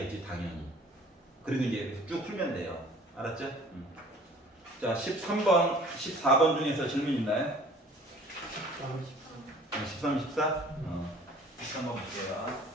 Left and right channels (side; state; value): both; normal; correlation 0.51